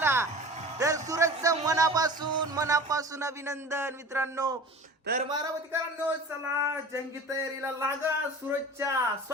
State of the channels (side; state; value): both; normal; correlation 0.39